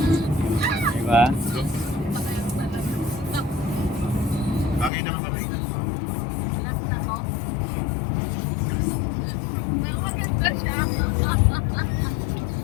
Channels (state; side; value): drops out; right; at 4.9 s